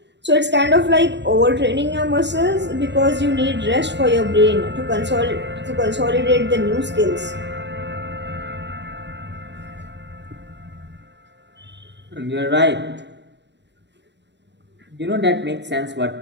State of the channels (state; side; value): late; left; 0.51 ms